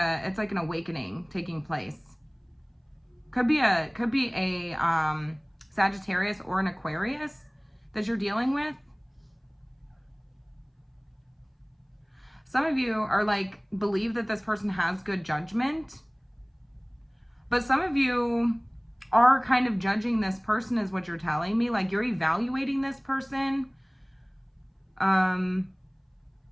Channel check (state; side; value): identical; both; correlation 1.00